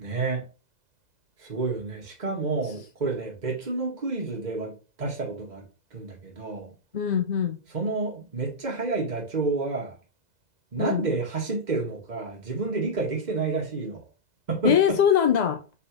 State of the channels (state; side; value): late; left; 2.0 ms